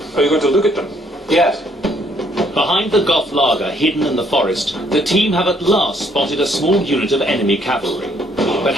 Are you going to look at them? Yes. Behind the Goth laager hidden in the forest, the team have at last spotted a small unit of enemy cavalry. But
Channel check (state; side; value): normal; both; correlation 0.67